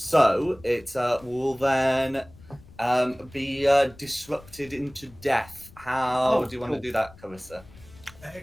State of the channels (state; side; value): noise; left; rumble, 23 dB below the sound